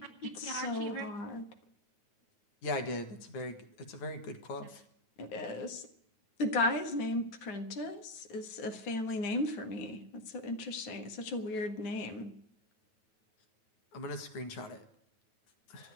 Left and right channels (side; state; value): right; late; 9.3 ms